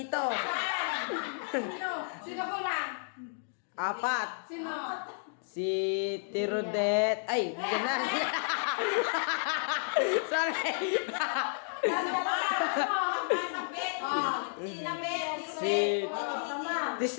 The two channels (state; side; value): silent; right; digital silence